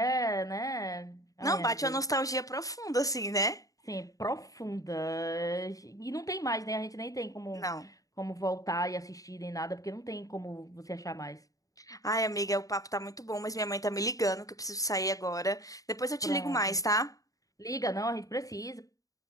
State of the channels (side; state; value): right; late; 0.17 ms